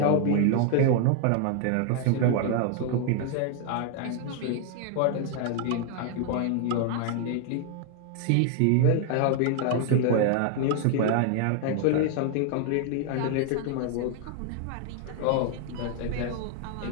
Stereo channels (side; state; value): both; different; correlation 0.00